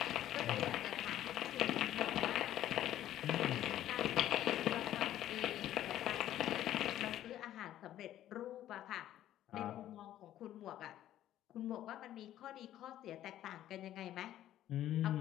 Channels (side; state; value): right; quieter; 12.5 dB